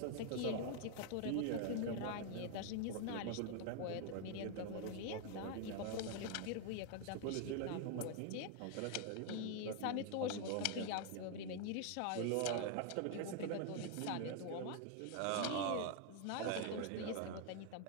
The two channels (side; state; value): both; different; correlation 0.00